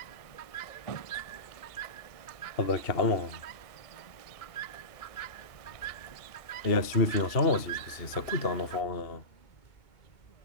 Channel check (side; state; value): right; late; 2.7 ms